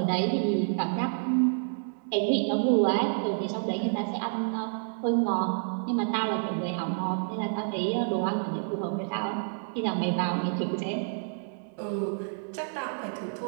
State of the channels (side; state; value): left; silent; digital silence